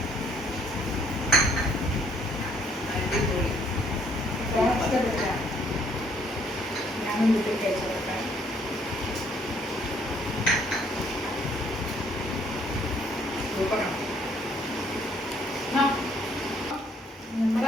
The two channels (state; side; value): normal; both; correlation 0.65